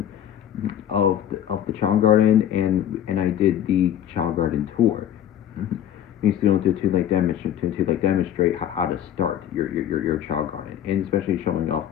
of the Chao Garden, and I did the Chao Garden tour. Basically, to demonstrate how to start your Chao Garden, and especially showing off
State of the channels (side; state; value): right; quieter; 10.5 dB